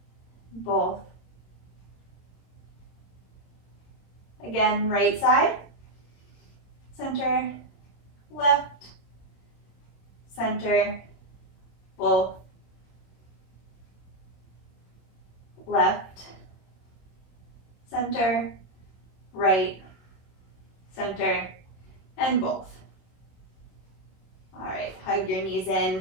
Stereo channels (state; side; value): late; right; 27 ms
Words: Both. Again, right side. Center. Left. Center. Both. Left, center, right, center, and both. All right, hug your knees in.